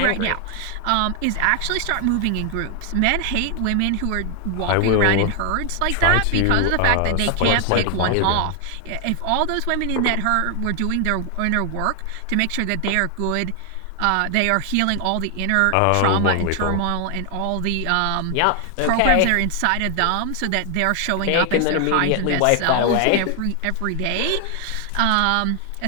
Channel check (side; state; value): both; different; correlation 0.00